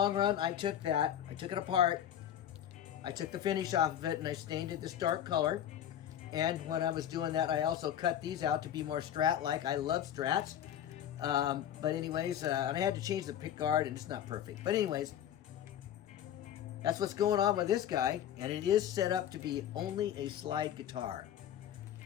run, I took it apart, I took the finish off of it, and I stained it this dark color. And when I was doing that, I also cut these out to be more Strat-like. I love Strats. But anyways, and I had to change the pick guard, and it's not perfect. But anyways, that's what's going on with this guy. And it is set up to be only a slide guitar.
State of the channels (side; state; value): right; quieter; 10.5 dB